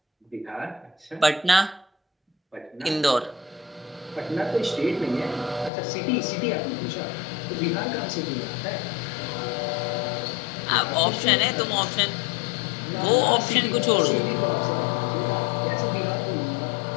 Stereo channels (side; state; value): right; drops out; at 5.7 s